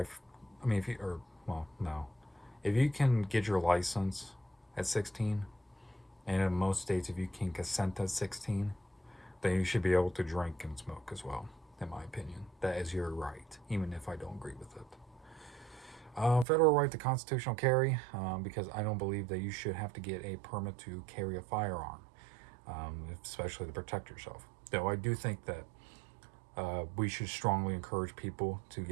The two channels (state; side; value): drops out; left; at 16.4 s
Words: I mean, no, if you can get your license at 16, and in most states, if you can consent at 16, then you should be able to drink and smoke as well, in my opinion. That is your right, even if I don't agree with it. Federal right to constitutional carry, because I don't believe that you should have to get a permit to carry a firearm, especially to protect yourself. Though I do think that we should strongly encourage people